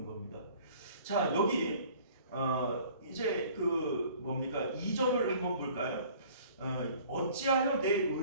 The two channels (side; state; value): both; inverted; correlation -0.51